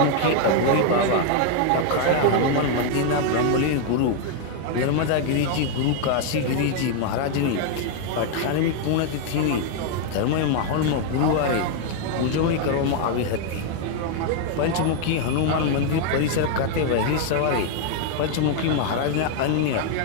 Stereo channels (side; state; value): both; different; correlation 0.00